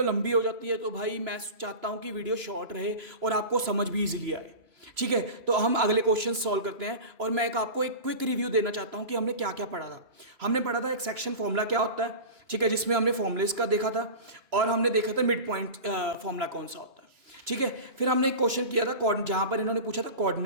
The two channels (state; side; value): late; left; 3.0 ms